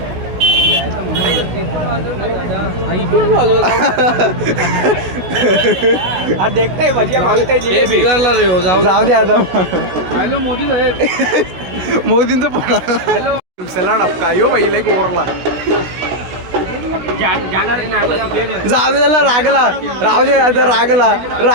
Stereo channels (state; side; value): late; left; 16 ms